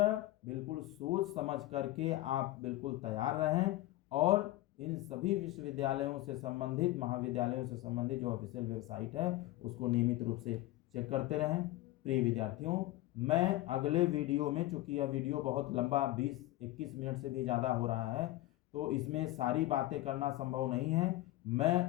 बिल्कुल सोच समझ करके आप बिल्कुल तैयार रहें, और इन सभी विश्वविद्यालयों से संबंधित, महाविद्यालयों से संबंधित जो ऑफिशियल वेबसाइट है उसको नियमित रूप से चेक करते रहें। प्रिय विद्यार्थियों, मैं अगले वीडियो में, चूंकि यह वीडियो बहुत लंबा 20-21 मिनट से भी ज़्यादा हो रहा है, तो इसमें सारी बातें करना संभव नहीं है। मैं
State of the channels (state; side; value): quieter; right; 16.9 dB